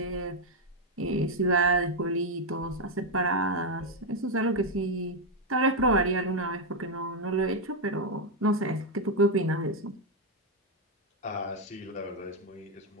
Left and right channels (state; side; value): normal; both; correlation 0.02